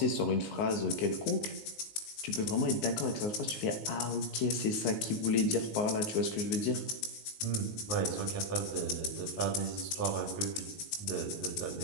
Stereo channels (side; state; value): right; late; 19 ms